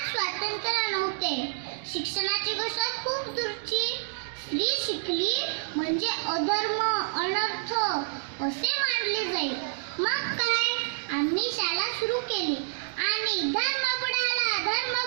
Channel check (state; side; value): silent; left; digital silence